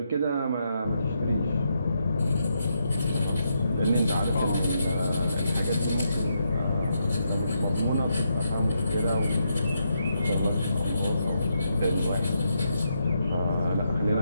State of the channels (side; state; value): both; inverted; correlation -0.81